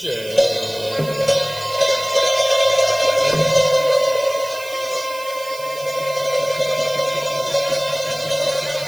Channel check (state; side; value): noise; right; hiss, 16 dB below the sound